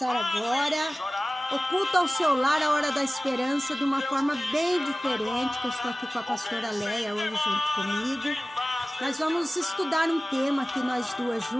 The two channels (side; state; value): both; normal; correlation 0.97